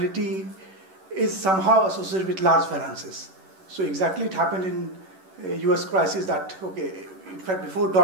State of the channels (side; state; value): left; late; 11 ms